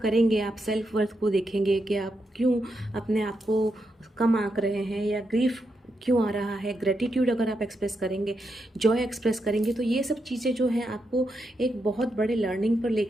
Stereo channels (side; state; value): both; normal; correlation 0.83